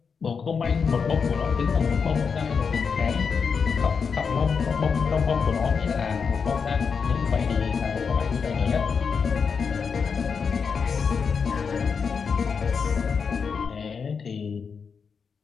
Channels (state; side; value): quieter; right; 5.8 dB